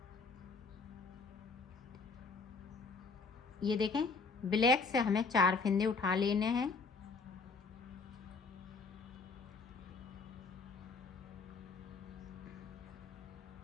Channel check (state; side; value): quieter; right; 4.4 dB